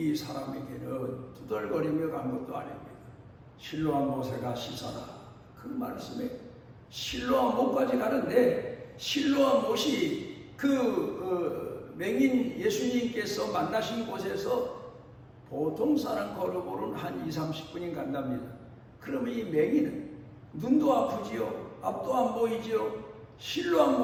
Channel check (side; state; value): both; identical; correlation 1.00